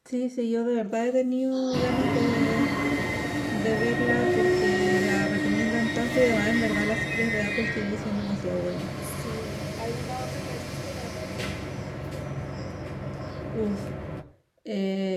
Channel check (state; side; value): identical; both; correlation 1.00